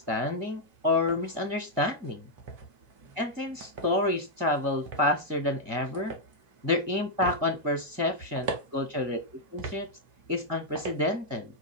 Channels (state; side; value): late; left; 2.1 ms